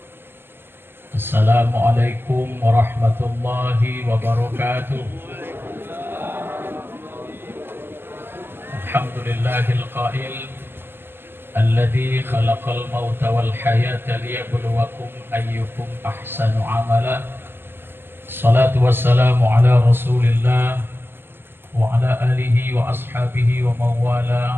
Assalamualaikum warahmatullahi wabarakatuh. Alhamdulillahil qail alladzi khalaqal mauta wal hayata liyabluwakum ayyukum ahsanu amala. Salatu wassalamu ala Rasulillah wa ala alihi wa ashabihi wa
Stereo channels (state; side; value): late; left; 0.10 ms